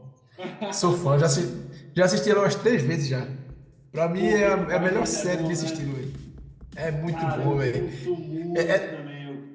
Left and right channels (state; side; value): identical; both; correlation 1.00